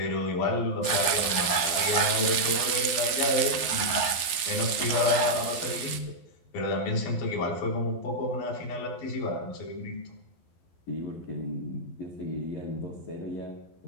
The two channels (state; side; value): late; right; 12 ms